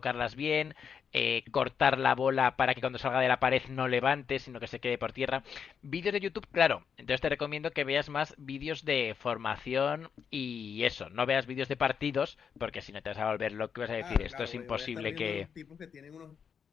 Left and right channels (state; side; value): quieter; right; 7.0 dB